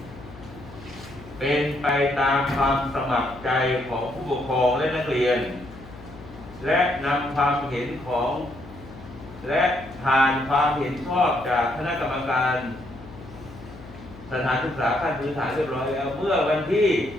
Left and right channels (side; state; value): left; noise; hum, 17 dB below the sound